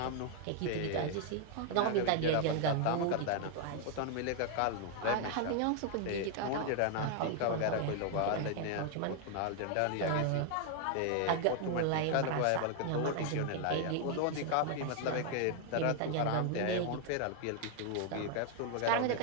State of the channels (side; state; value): both; different; correlation 0.00